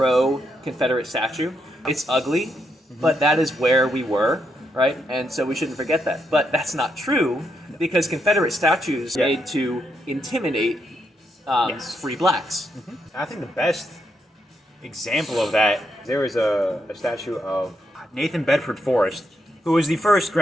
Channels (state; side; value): normal; both; correlation 0.80